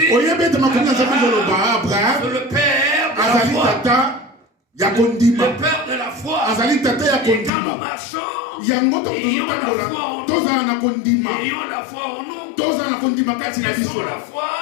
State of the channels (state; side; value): drops out; right; at 7.5 s